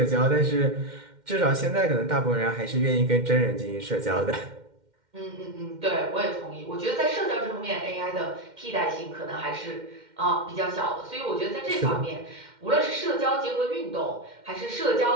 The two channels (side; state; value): left; late; 2.1 ms